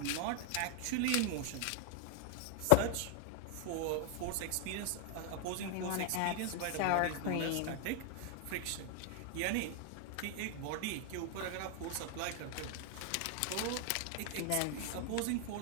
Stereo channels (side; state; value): both; different; correlation 0.00